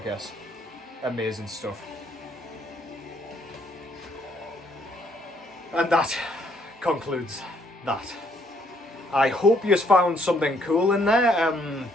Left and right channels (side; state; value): both; normal; correlation 0.68